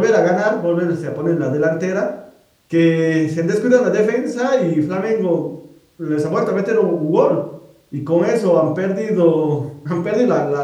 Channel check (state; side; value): identical; both; correlation 1.00